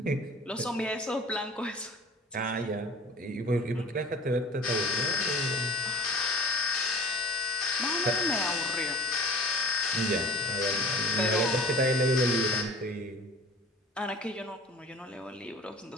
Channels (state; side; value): normal; both; correlation 0.42